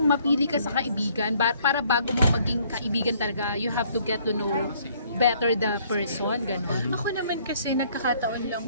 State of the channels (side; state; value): both; inverted; correlation -0.62